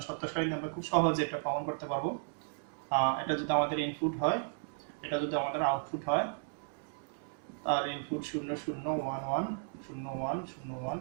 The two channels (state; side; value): silent; left; digital silence